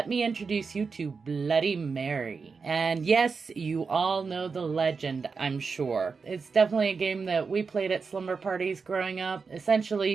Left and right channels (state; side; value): quieter; left; 5.0 dB